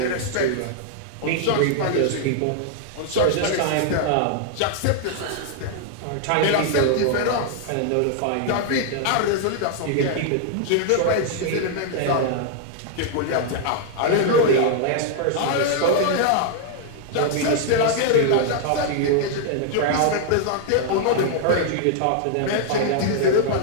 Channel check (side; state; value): both; different; correlation 0.00